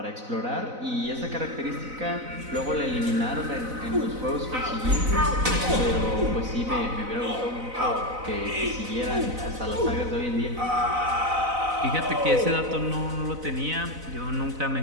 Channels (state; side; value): late; left; 4.0 ms